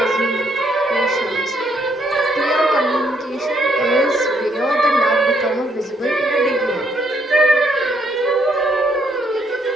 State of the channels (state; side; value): normal; both; correlation 0.71